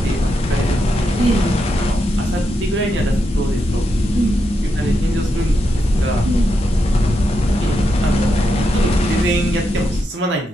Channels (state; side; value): normal; both; correlation 0.84